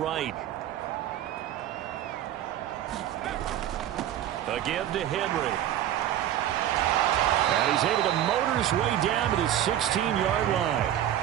A give to Henry. And he's able to motor his way down to the 16-yard line.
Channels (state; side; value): quieter; left; 11.7 dB